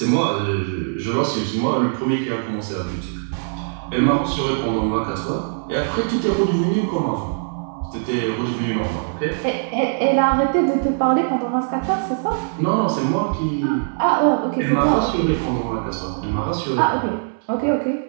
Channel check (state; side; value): silent; left; 63 dB below the other